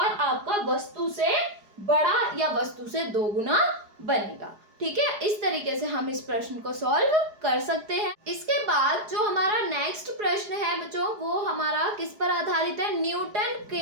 आपका वस्तु से बड़ा या वस्तु से 2 गुना बनेगा। ठीक है, इस तरीके से हम इस प्रश्न को सॉल्व कर सकते हैं। इसके बाद जो हमारा नेक्स्ट प्रश्न है बच्चों, वो हमारा किस पर आधारित है, न्यूटन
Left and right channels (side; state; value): left; late; 4.9 ms